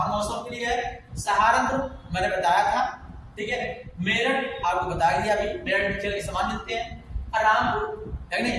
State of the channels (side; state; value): both; identical; correlation 1.00